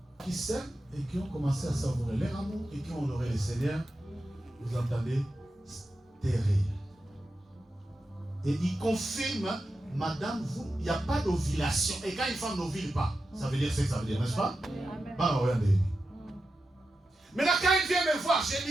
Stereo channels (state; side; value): normal; both; correlation 0.90